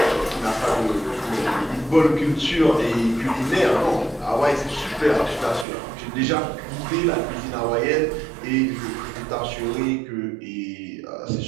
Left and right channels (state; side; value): drops out; left; at 5.7 s